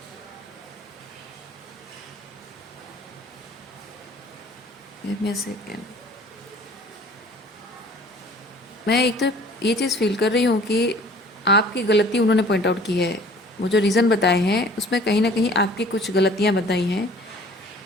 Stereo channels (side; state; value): both; normal; correlation 0.50